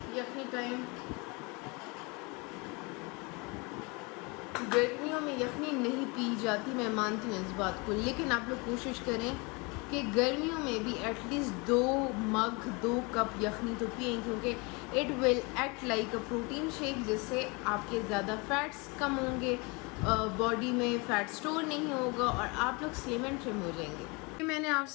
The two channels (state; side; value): quieter; right; 28.6 dB